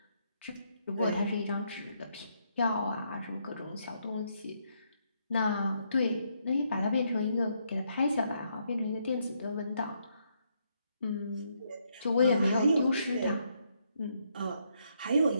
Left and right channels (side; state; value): both; inverted; correlation -0.76